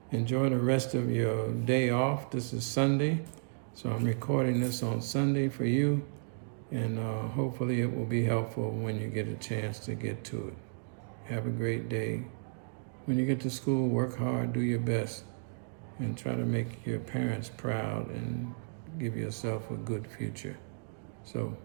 enjoy the rest of your day off. This is Sunday, so I'm recording this on Sunday for you, and hopefully it will be helpful when you get a chance to get to it. Have a great day. When you get to school, work hard, do your best, and try to make your parents proud and give yourself a good future. So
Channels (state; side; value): silent; left; digital silence